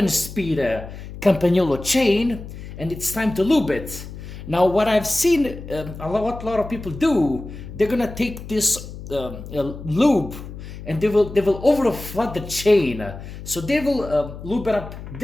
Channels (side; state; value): left; noise; hum, 12 dB below the sound